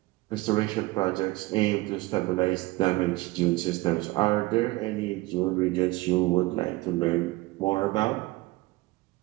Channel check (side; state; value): left; quieter; 20.8 dB